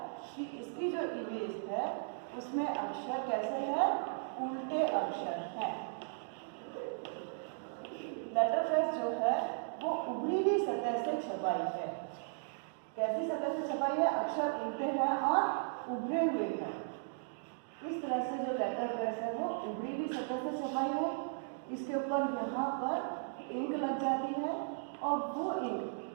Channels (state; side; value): silent; left; digital silence